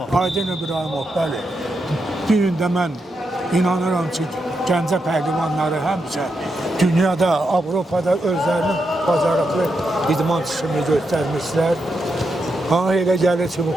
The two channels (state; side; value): normal; both; correlation 0.84